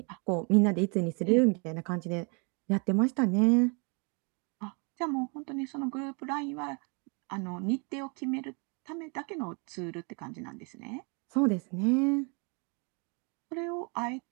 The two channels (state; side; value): quieter; left; 34.4 dB